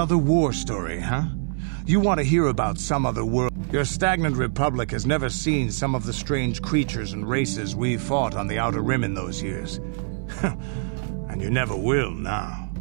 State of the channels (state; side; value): silent; left; 62 dB below the other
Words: war story, huh? You want to hear about some other world. Your stagnant republic has never seen some of the strange creatures and races we fought on the Outer Rim in those years. And you never will now.